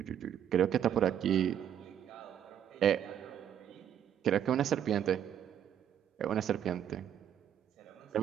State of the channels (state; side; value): quieter; left; 9.6 dB